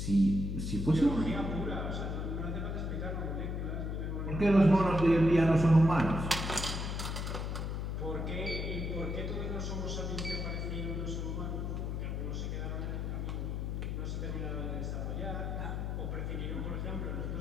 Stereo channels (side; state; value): left; noise; hum, 2 dB below the sound